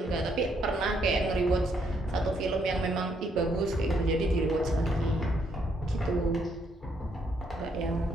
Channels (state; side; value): normal; both; correlation 0.73